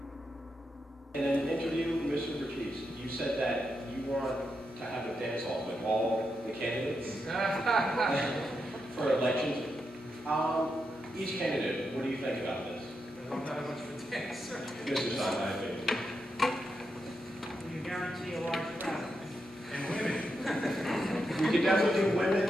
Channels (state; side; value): normal; both; correlation 0.85